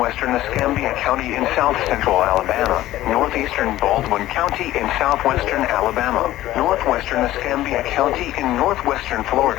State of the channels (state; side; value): quieter; right; 15.0 dB